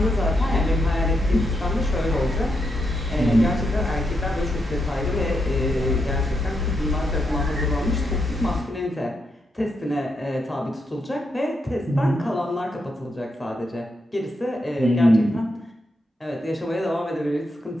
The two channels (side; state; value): both; normal; correlation 0.82